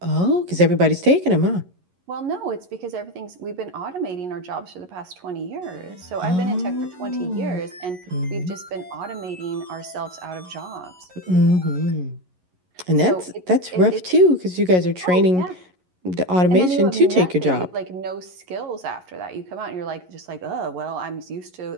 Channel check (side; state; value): left; late; 11 ms